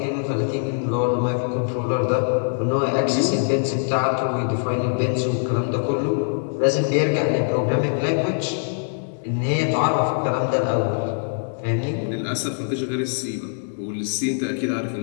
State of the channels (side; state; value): right; silent; digital silence